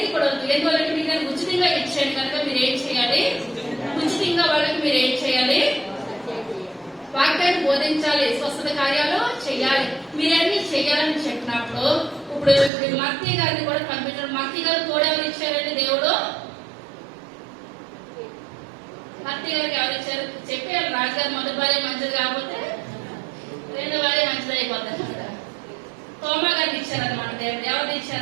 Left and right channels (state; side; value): drops out; left; at 12.7 s